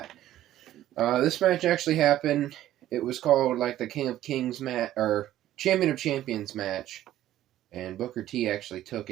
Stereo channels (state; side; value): quieter; left; 13.2 dB